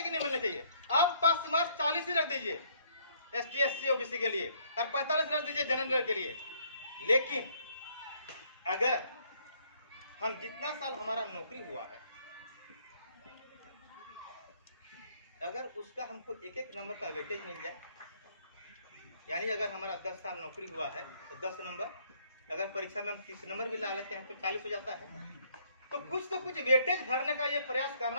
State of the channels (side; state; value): both; inverted; correlation -0.65